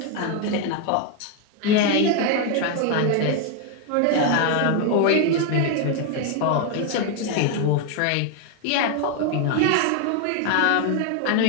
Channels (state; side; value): different; both; correlation 0.01